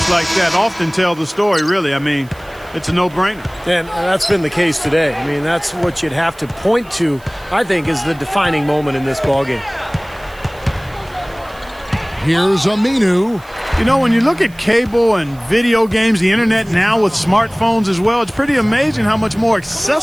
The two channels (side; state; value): right; noise; hiss, 26 dB below the sound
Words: like that often tell the story, really. I mean, it's a no-brainer. And that's been the case today. I mean, that's what you'd have to point to, I think, is the defining moment in this ballgame. Here's Aminu. You know, when you look at cable and video games, the internet now with smartphones as well, it's pretty amazing how much more